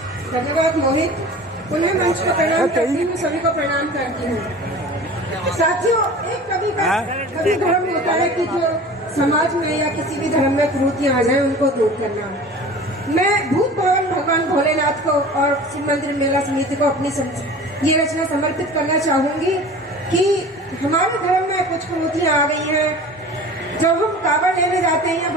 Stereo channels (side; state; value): both; normal; correlation 0.40